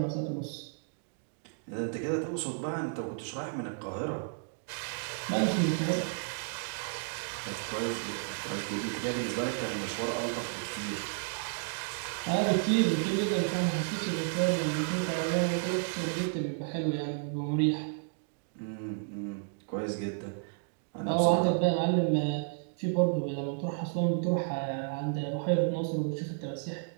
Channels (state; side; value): silent; left; digital silence